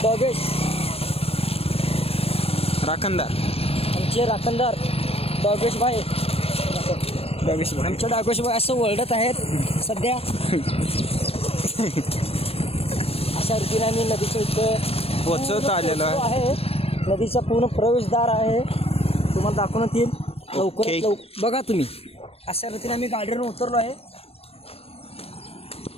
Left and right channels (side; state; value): right; late; 0.28 ms